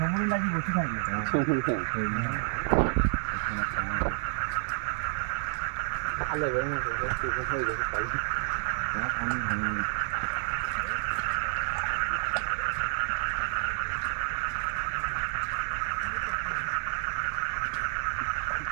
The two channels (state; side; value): silent; left; 58 dB below the other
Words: লাগি বসে থাকবে। ভালো হয়ে গেছে।